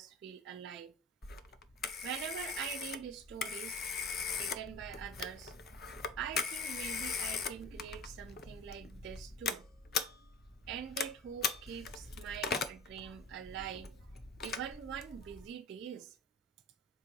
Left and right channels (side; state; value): both; normal; correlation 0.38